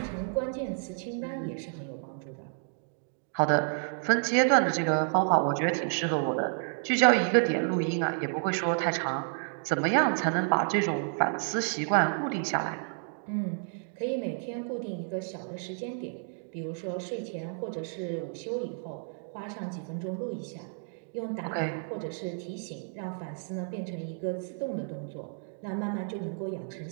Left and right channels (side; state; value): left; silent; 57 dB below the other